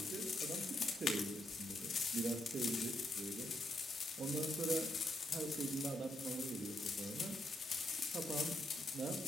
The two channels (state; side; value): normal; both; correlation 0.78